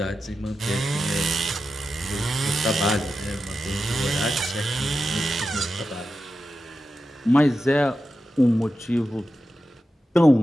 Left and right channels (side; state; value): both; normal; correlation 0.91